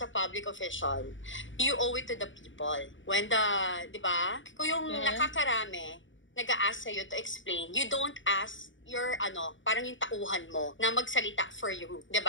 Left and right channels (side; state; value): right; late; 0.56 ms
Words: a public official, you owe it to the people. When di ba? Kung yung nakakarami, nag-a-ask sa'yo to explain, you don't ask your, parang yung tauhan mo na magsalita for you.